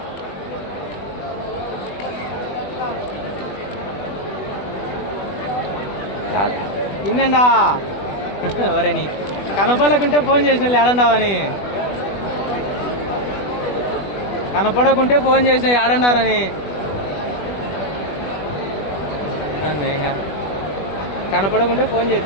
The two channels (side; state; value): right; late; 20 ms